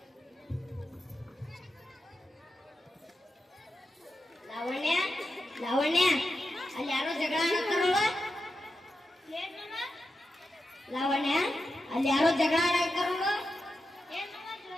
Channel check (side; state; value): both; normal; correlation 0.89